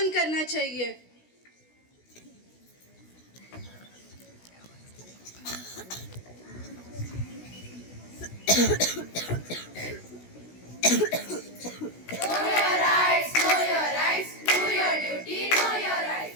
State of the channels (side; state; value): right; late; 16 ms